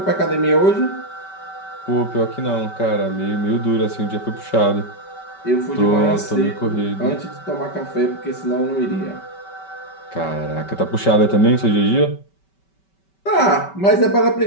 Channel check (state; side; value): late; right; 5.2 ms